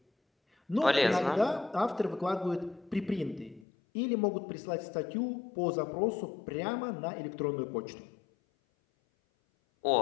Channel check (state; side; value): drops out; right; at 3.7 s